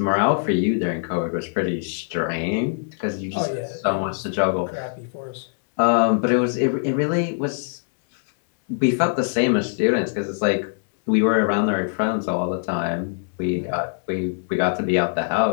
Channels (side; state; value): right; silent; digital silence